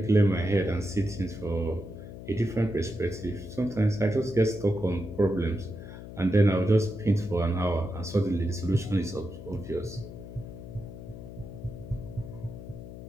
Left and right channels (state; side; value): noise; left; hum, 12 dB below the sound